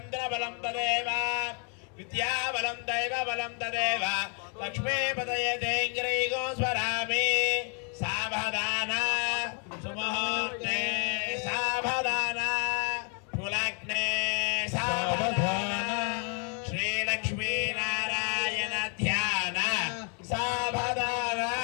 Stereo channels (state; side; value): quieter; right; 39.4 dB